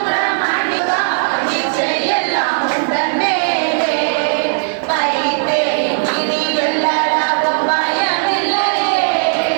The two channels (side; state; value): left; silent; digital silence